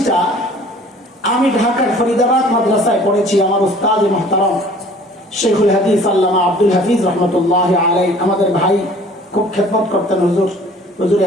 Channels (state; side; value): normal; both; correlation 0.51